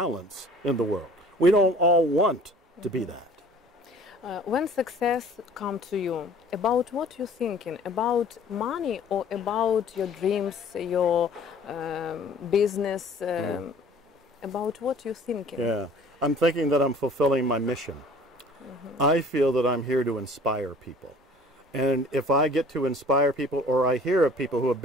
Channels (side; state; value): both; normal; correlation 0.50